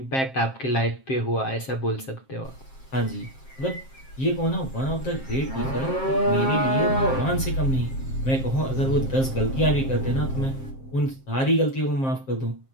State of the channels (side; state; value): right; late; 7.5 ms